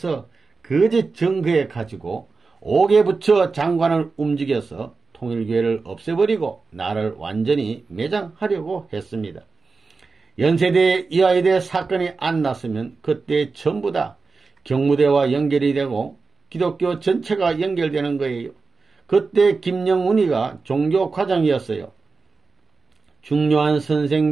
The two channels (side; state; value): left; quieter; 4.3 dB